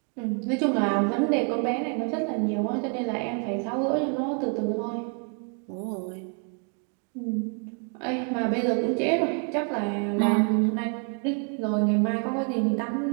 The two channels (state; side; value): quieter; left; 39.3 dB